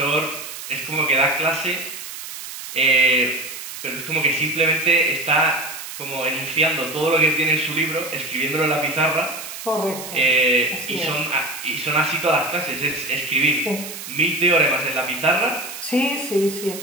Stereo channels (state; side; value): noise; right; hiss, 10 dB below the sound